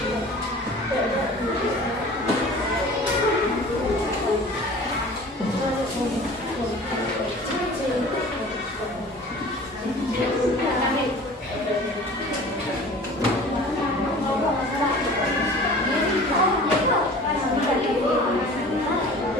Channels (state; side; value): normal; both; correlation 0.43